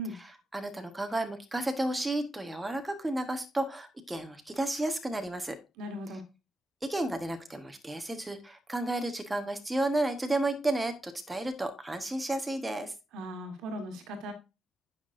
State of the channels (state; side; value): normal; both; correlation 0.88